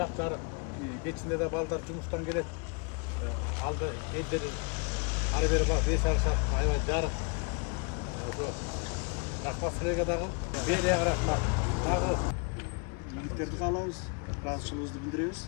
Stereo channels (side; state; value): right; quieter; 33.1 dB